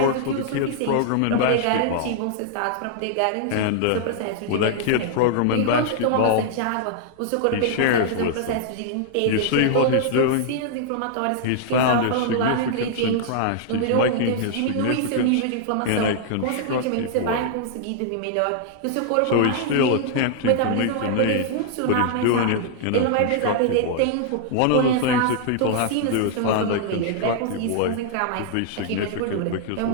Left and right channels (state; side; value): different; both; correlation -0.01